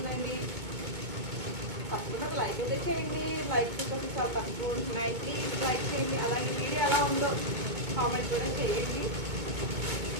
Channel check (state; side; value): late; left; 2.2 ms